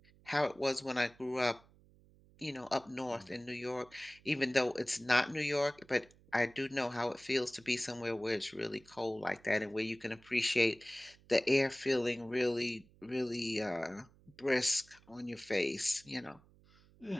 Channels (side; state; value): right; noise; hum, 27 dB below the sound